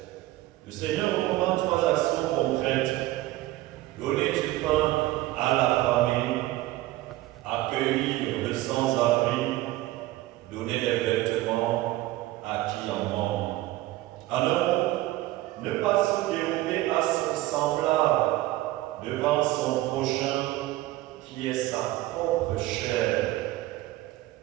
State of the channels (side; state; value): left; quieter; 16.8 dB